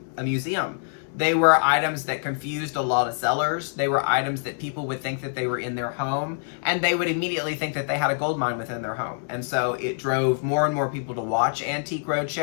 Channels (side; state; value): right; silent; 62 dB below the other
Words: a museum. They were items that confused a lot of sellers. They were items that people would think that they were in their home, and they would immediately think that they had a gold mine within their home. And so it drove more and more people to watch Antique